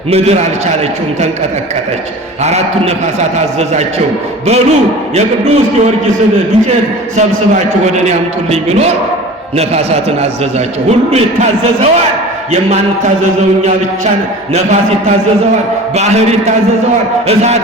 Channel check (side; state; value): both; normal; correlation 0.39